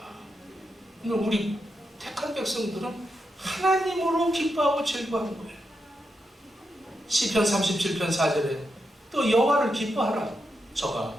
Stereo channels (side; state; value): both; normal; correlation 0.85